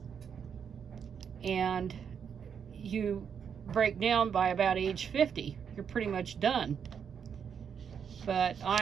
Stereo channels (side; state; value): left; quieter; 7.3 dB